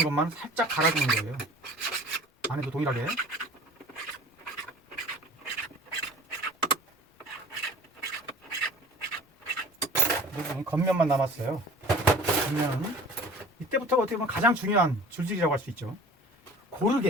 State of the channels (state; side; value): normal; both; correlation 0.44